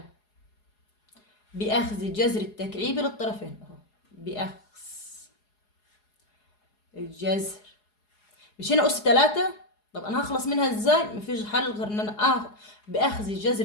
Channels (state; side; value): late; right; 4.8 ms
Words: بأخذ جذر التكعيبي للطرفين اهو. بأخذ الجذر، مش هنا أس 3. طب أنا هخلص منها ازاي؟ مفيش حل غير إن أنا بأخذ